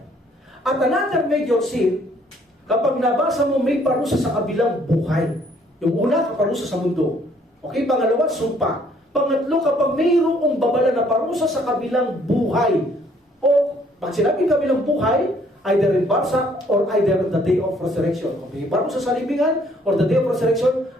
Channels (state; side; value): normal; both; correlation 0.63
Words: At another major sin, kapag nabasa mo may parusa sa kabilang buhay. Yung una, parusa sa mundo. Okay, pangalawa, sumpa. Pangatlo, kapag mayroong babala na parusa sa kabilang buhay. O, pag sinabing kabilang buhay, either in barsa or either on the day of resurrection. Kung may parusa sa libingan or the day of resurrection,